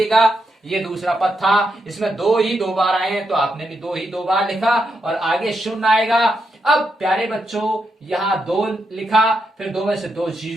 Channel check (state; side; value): normal; both; correlation 0.83